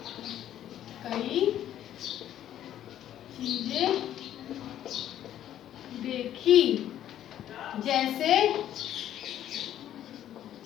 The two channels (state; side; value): quieter; right; 11.4 dB